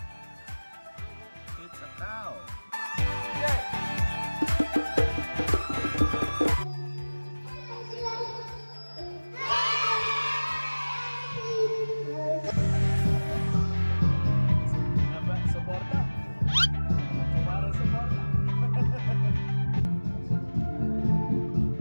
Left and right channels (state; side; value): inverted; both; correlation -1.00